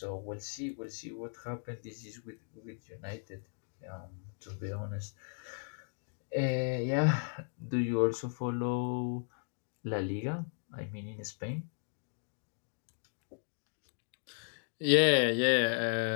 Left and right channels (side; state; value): right; silent; 54 dB below the other